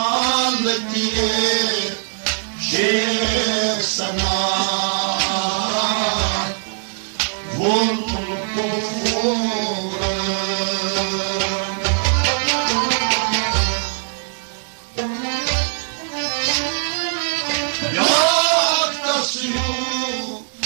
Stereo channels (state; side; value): silent; left; digital silence